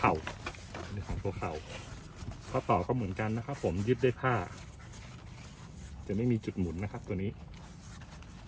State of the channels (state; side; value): identical; both; correlation 1.00